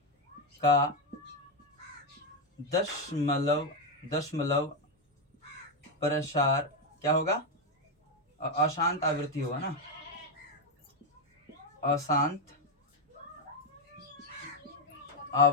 का दशमलव प्रसार क्या होगा, अशांत आवृत्ति होगा ना, अशांत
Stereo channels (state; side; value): normal; both; correlation 0.05